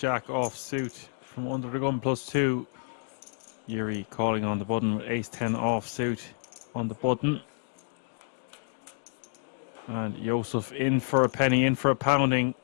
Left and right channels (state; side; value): silent; right; digital silence